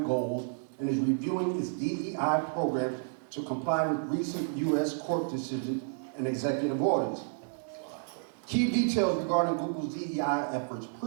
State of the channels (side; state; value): left; silent; digital silence